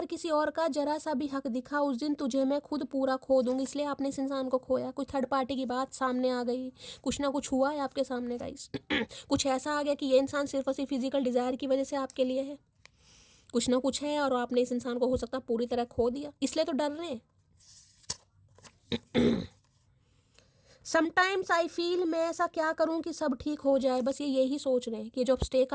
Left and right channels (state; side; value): identical; both; correlation 1.00